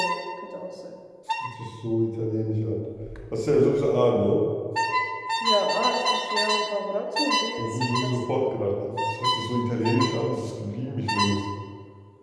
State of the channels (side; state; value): both; identical; correlation 1.00